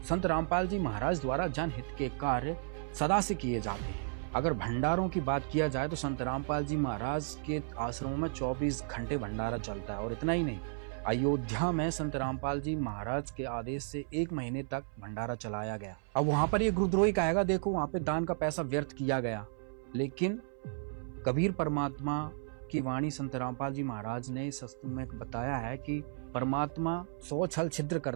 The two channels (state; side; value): silent; left; 55 dB below the other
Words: संत रामपाल जी महाराज द्वारा जनहित के कार्य सदा से किए जाते हैं। अगर भंडारों की बात किया जाए तो संत रामपाल जी महाराज के आश्रमों में 24 घंटे भंडारा चलता है। और इतना ही नहीं, अयोध्या में संत रामपाल जी महाराज के आदेश से 1 महीने तक भंडारा चलाया गया। अब वहां पर ये गुरुद्रोही कहेगा देखो वहां पे दान का पैसा व्यर्थ किया गया, लेकिन कबीर परमात्मा की वाणी संत रामपाल जी महाराज ने इस शास्त्र में बताया है कि परमात्मा 100 छल छिद्र